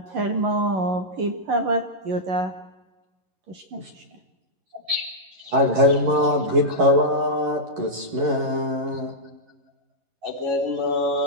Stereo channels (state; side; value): late; left; 11 ms